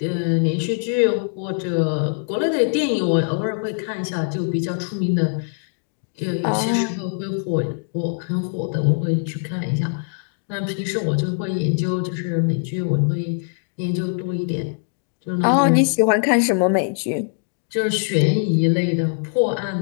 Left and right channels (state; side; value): silent; right; digital silence